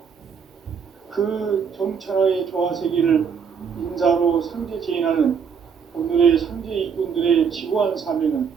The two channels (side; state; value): left; quieter; 6.6 dB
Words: 그 정천하의 조화 세계를 인사로 상제 제인하는 오늘의 상제 일꾼들의 지구한 사명은